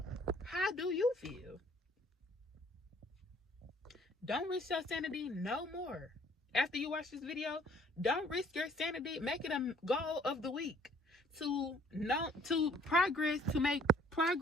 How do you feel? Don't risk your sanity no more. After you watch this video, don't risk your sanity. Make it a goal of the week to make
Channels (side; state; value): both; normal; correlation 0.58